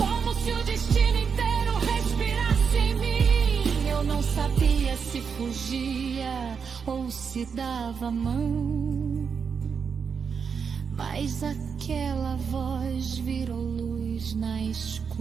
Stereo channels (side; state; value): left; quieter; 6.2 dB